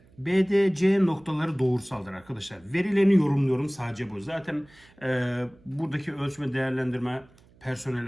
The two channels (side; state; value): right; noise; hum, 28 dB below the sound